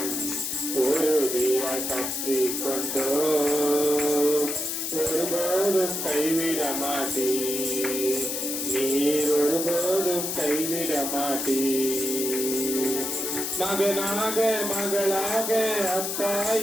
உறுதியாய் பற்றி கொண்டோம், ஒருபோதும் கைவிட மாட்டீர், நீர் ஒருபோதும் கைவிட மாட்டீர். மகனாக மகளாக அப்பா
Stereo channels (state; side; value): noise; left; hiss, 2 dB below the sound